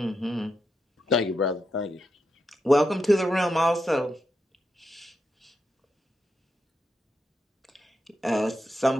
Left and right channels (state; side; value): normal; both; correlation 0.84